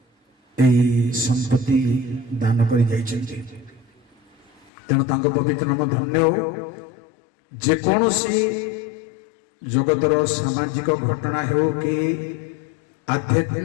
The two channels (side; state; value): right; drops out; at 4.7 s